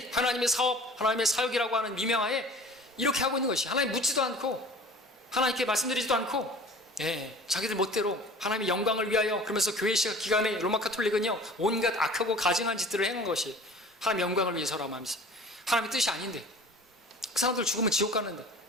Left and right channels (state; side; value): normal; both; correlation 0.44